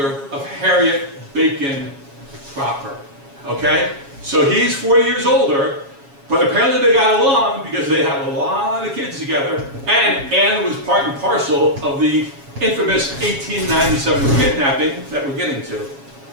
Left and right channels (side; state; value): left; late; 7.2 ms